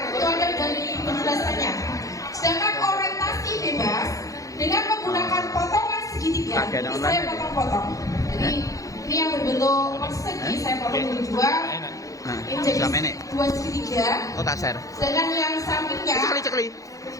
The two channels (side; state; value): right; late; 0.16 ms